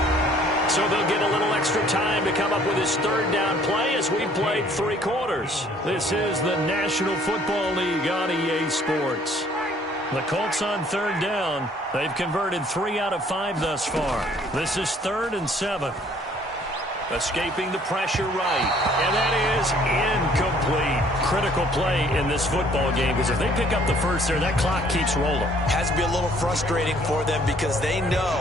So they'll get a little extra time to come up with his 3rd down play as we played 3 quarters. This is the National Football League on EA Sports. The Colts on 3rd down. They've converted 3 out of 5 thus far. This is 3rd and 7. Escaping the pressure right. And that is incomplete. Critical play in this football game, because if they pick up the first there, that clock keeps rolling. Has to be a little frustrating for them, because they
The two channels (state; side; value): normal; both; correlation 0.59